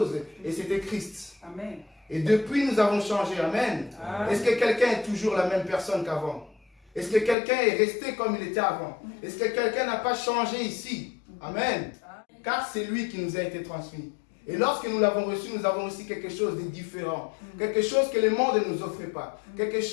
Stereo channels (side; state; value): right; drops out; at 7.4 s